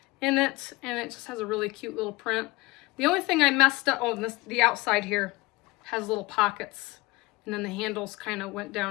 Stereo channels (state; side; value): quieter; right; 22.3 dB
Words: in it, and it just has a really cute little print. The only thing I messed up, the outside here has little pockets, and then the handles kind of went